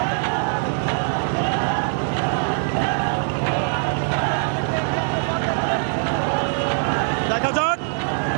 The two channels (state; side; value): silent; left; 57 dB below the other